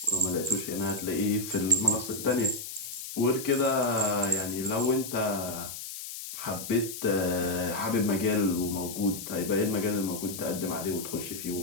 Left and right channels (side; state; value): left; noise; hiss, 9 dB below the sound